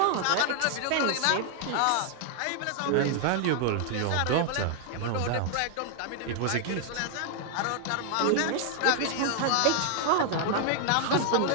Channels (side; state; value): both; different; correlation 0.00